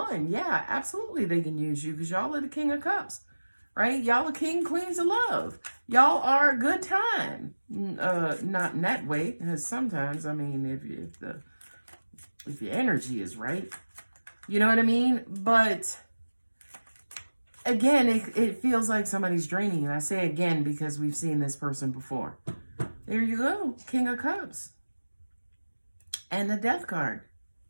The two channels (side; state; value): both; inverted; correlation -1.00